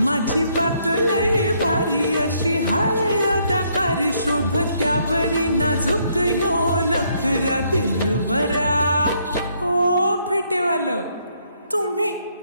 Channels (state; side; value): inverted; both; correlation -0.71